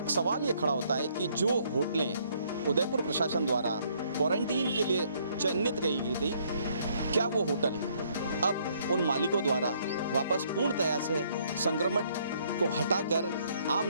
सवाल ये खड़ा होता है कि जो होटलें उदयपुर प्रशासन द्वारा क्वारंटीन के लिए चिन्हित कही गई थी, क्या वो होटल अब उन मालिकों द्वारा वापस पूर्णतया से संक्रमण को हटाकर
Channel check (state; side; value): inverted; both; correlation -0.66